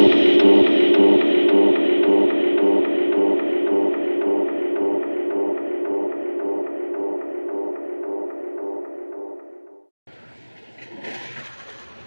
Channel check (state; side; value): inverted; both; correlation -1.00